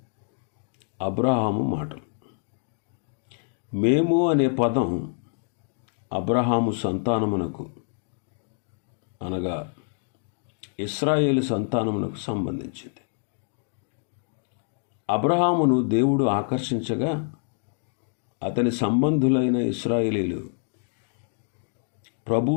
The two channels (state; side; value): silent; right; 60 dB below the other